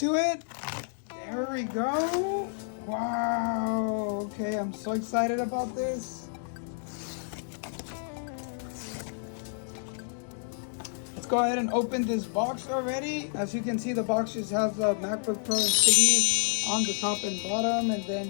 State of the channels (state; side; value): silent; right; digital silence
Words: it. There we go. Wow. Okay, I'm so excited about this. Let's go ahead and open this box already. As you can see, the box just has the MacBook Pro insignia on the top and bottom, and